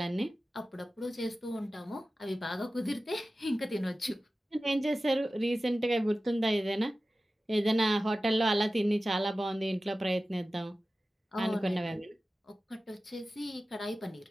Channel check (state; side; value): normal; both; correlation 0.95